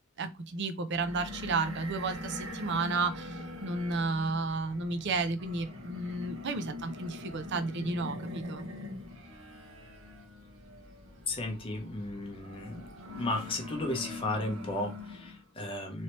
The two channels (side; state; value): both; normal; correlation 0.37